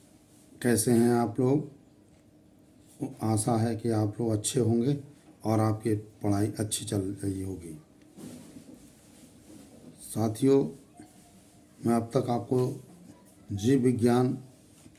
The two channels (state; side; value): identical; both; correlation 1.00